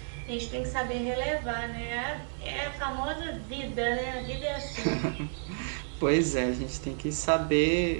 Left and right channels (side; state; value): left; silent; 57 dB below the other